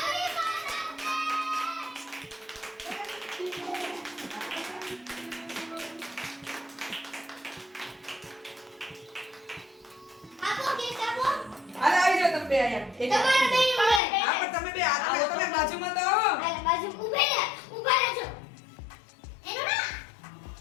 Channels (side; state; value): right; drops out; at 14.0 s